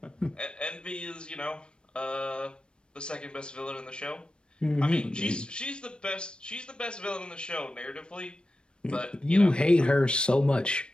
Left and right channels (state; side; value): late; right; 0.054 ms